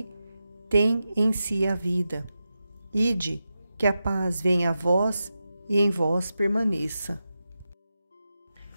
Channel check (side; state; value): both; inverted; correlation -0.91